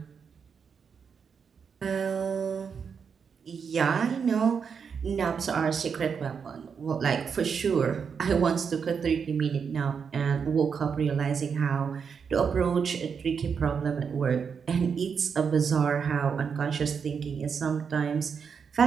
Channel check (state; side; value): quieter; left; 6.4 dB